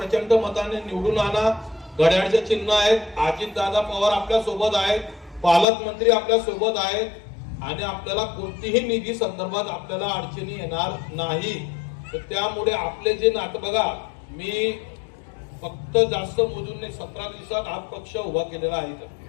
मताने निवडून आणा. घड्याळचे चिन्ह आहेत, अजितदादा पवार आपल्या सोबत आहेत, पालकमंत्री आपल्या सोबत आहेत आणि आपल्याला कोणतीही निधी संदर्भात आपल्याला अडचणी येणार नाही. तर त्यामुळे आपले जे नातं बघा, मी फक्त जास्त मोजून नाही, 17 दिवसात हा पक्ष उभा केलेला आहे.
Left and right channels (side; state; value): right; drops out; at 5.7 s